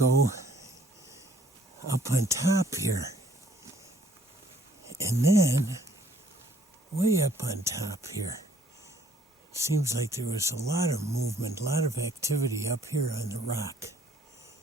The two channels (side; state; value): both; normal; correlation 0.62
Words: up on top here. And then way up on top here. Seems like there was a lot of movement, a lot of activity up here on the rock.